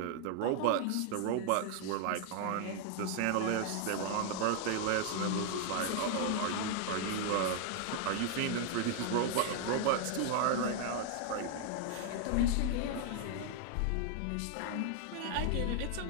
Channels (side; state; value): both; different; correlation 0.00